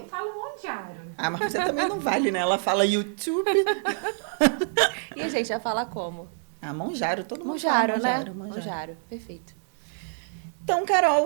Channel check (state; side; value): silent; left; 60 dB below the other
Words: falo Monjaro. Ah, mas você também não vale, né? Ela fala YouTube. E a gente vai falar como? Ah, Monjaro, todo mundo Monjaro, fala né? Monjaro, Monjaro. Monjaro, perfeito. Então,